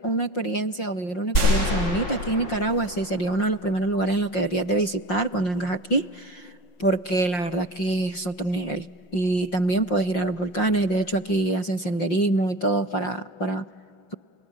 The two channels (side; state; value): right; late; 5.6 ms